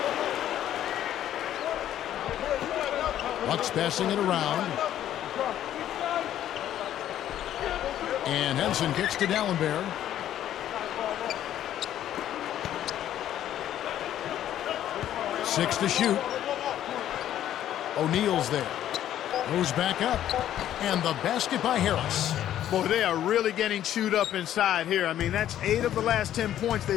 Bucks passing it around. And Henson kicks to Dallenberg. Six to shoot. O'Neal's there. Goes back up. And the basket by Harris. Boy, they are really getting chewed up inside here. I mean, that's 8 of the last 10 points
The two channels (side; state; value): right; quieter; 11.6 dB